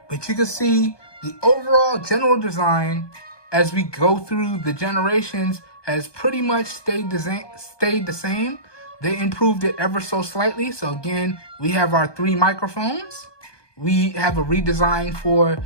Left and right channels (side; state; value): right; late; 1.2 ms